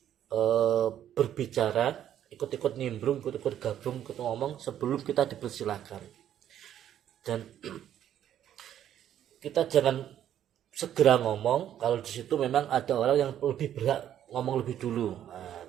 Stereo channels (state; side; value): quieter; left; 10.7 dB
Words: berbicara, ikut-ikut nimbrung, ikut-ikut gabung, ikut ngomong sebelum kita dipersilakan. Dan kita jangan segera ngomong kalau di situ memang ada orang yang lebih berhak ngomong lebih dulu. Nah,